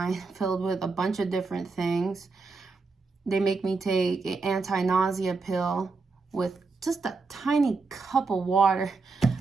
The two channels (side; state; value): left; quieter; 4.1 dB